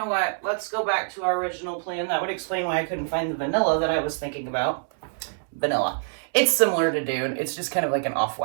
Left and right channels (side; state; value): left; silent; digital silence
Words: what? Let's go back to our original plan. That would explain why I couldn't find the vanilla that I was thinking about. Vanilla. It's similar to Dune. It's just kind of like an